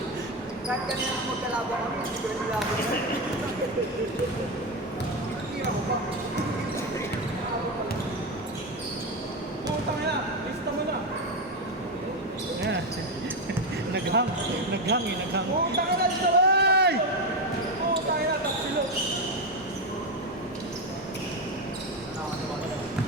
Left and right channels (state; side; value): normal; both; correlation 0.12